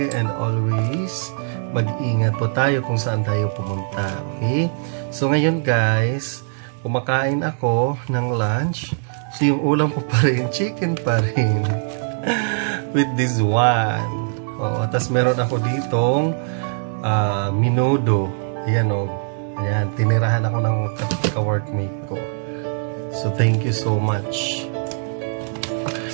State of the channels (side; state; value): left; silent; digital silence